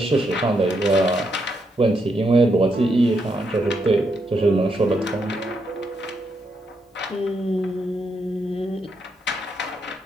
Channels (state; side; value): normal; both; correlation 0.79